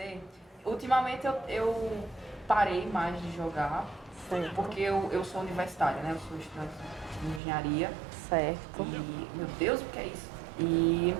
Ultimamente eu parei mais de jogar, Certo. porque eu sou universitária, né? Eu sou estudante de engenharia. Certo. E, meu Deus, o que é isso? E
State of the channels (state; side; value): drops out; left; at 7.4 s